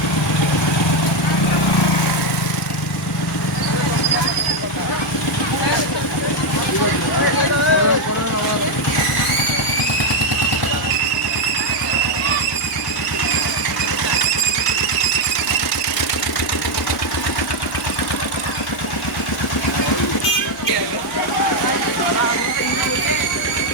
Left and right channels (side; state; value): right; noise; hum, 26 dB below the sound